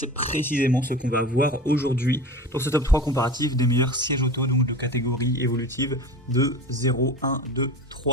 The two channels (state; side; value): normal; both; correlation 0.32